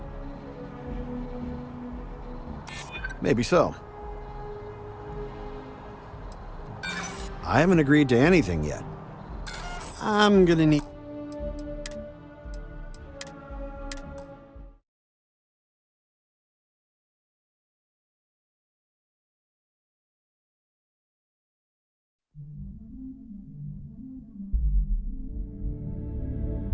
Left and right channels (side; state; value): both; identical; correlation 1.00